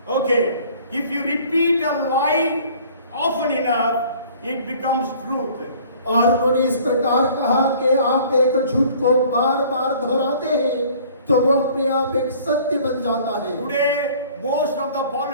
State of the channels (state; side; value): inverted; both; correlation -0.52